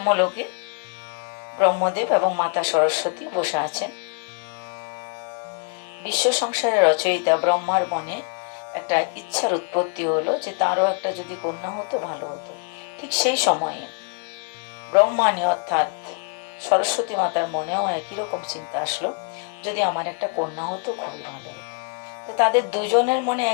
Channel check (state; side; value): quieter; right; 35.9 dB